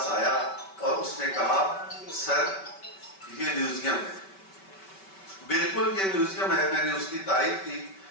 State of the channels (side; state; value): right; late; 5.2 ms